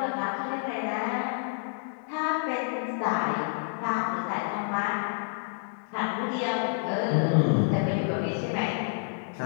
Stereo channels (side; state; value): right; silent; 59 dB below the other